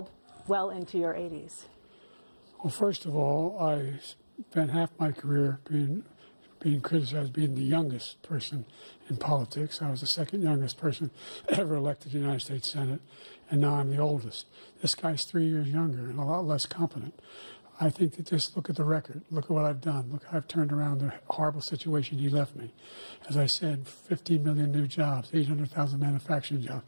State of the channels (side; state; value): both; inverted; correlation -1.00